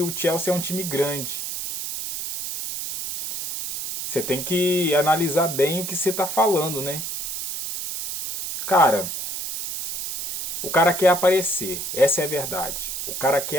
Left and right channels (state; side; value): noise; right; hiss, 5 dB below the sound